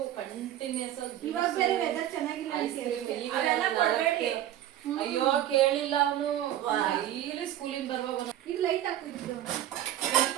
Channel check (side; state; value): left; quieter; 12.3 dB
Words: ಕಂಟಿನ್ಯೂಸ್ ಇವಾಗ ಬೇರೆ ವೆದರ್ ಚೆನ್ನಾಗಿಲ್ಲ ಐಸ್ ಕ್ರೀಮ್ ಅದೆಲ್ಲ ಕೊಡ್ಬೇಡಿ. ಅಯ್ಯೋ ಕೇಳಿಲ್ಲ ಅವನು ಡೈಲಿ ಸ್ಕೂಲಿಂದ ಬರುವಾಗ ಇದು ಲೈಟ್ ಹಾಕಿದ್ದು